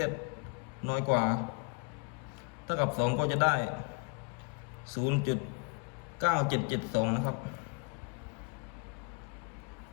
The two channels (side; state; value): right; quieter; 31.9 dB